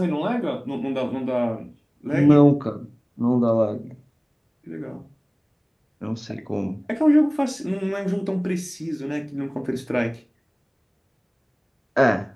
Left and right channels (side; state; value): both; identical; correlation 1.00